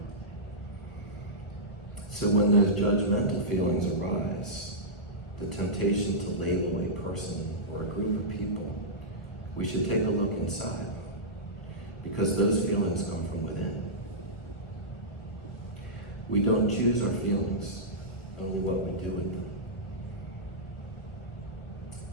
So when those judgmental feelings arise, the temptation to label a person or a group of people, we should take a look inside, because those feelings come from within. We don't choose our feelings, only what we do with them.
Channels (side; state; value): right; late; 1.4 ms